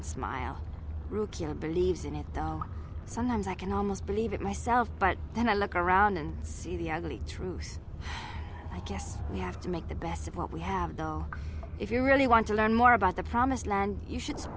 smile. Rakghouls believes in it, though. Sometimes I can almost believe it myself, but then I look around and see the ugly truth. I guess we have to make the best of what we have, though. If you really want to learn more about the Promised Land, you should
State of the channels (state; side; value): identical; both; correlation 1.00